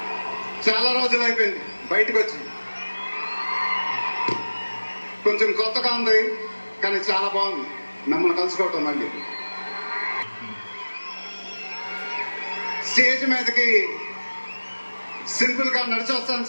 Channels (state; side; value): inverted; both; correlation -1.00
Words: చాలా రోజులు అయిపోయింది బయటకు వచ్చి. కొంచెం కొత్తగా ఉంది కానీ చాలా బాగుంది మిమ్మల్ని కలుసుకోవటం. మళ్ళీ స్టేజ్ మీదకి సింపుల్ గా నడిచి వస్తాను